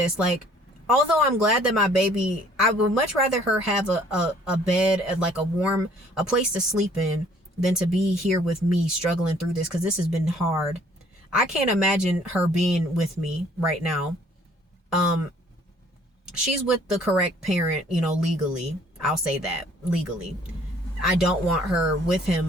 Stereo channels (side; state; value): both; normal; correlation 0.58